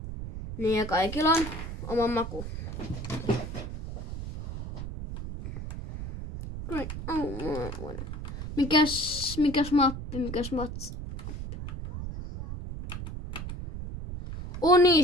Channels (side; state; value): right; noise; rumble, 7 dB below the sound